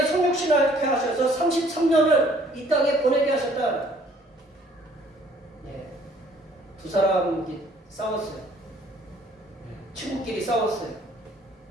성육신하게 하셔서 33년을 이 땅에 보내게 하셨다. 네. 두 사람이 싸웠어요. 친구끼리 싸웠어요.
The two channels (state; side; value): normal; both; correlation 0.59